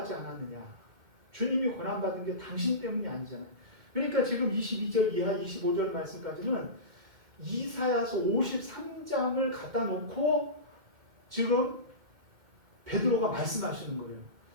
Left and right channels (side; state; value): left; late; 2.1 ms